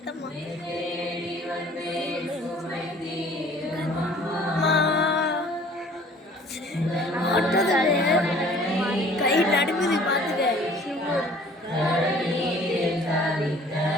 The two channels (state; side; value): normal; both; correlation 0.52